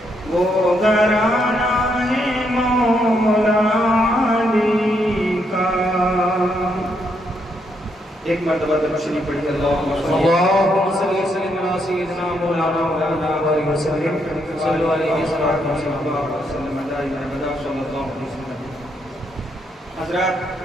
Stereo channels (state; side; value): normal; both; correlation 0.76